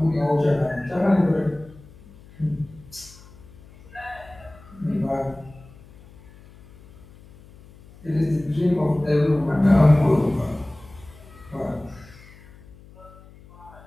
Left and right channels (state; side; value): noise; left; hum, 23 dB below the sound